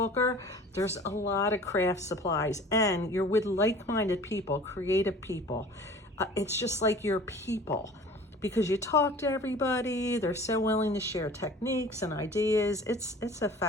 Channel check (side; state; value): both; normal; correlation 0.44